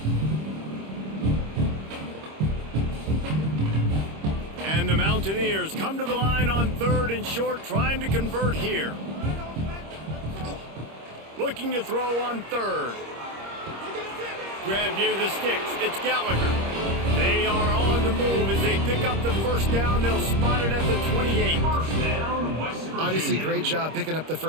And the Mountaineers come to the line on 3rd and short, trying to convert here. Looking to throw on 3rd. Grab near the sticks. It's Gallagher. They are on the move as they pick up the first down. They'll spot it at the 28. Obviously, great job picking up the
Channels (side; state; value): left; late; 26 ms